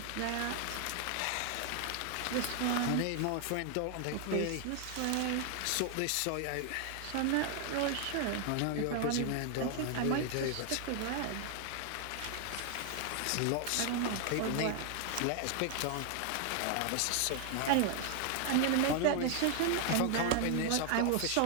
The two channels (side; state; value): both; different; correlation 0.00